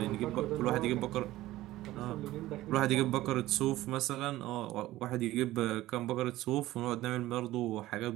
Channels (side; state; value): left; quieter; 16.2 dB